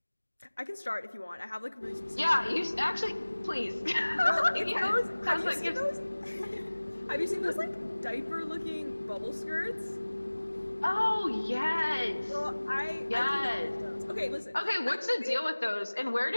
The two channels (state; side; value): inverted; both; correlation -1.00